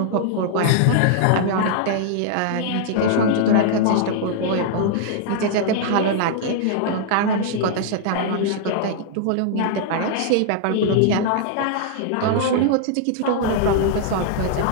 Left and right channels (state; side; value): different; both; correlation -0.01